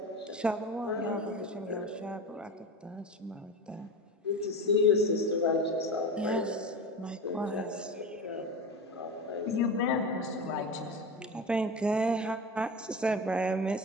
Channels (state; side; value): normal; both; correlation 0.27